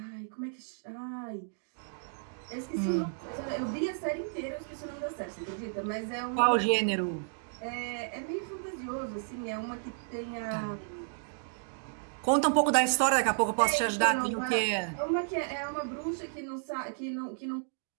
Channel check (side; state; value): left; silent; digital silence